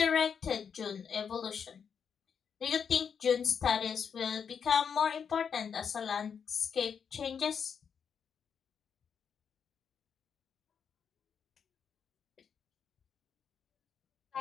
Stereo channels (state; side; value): quieter; right; 6.9 dB